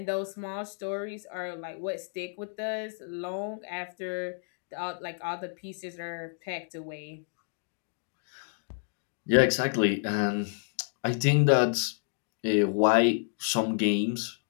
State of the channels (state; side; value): silent; right; digital silence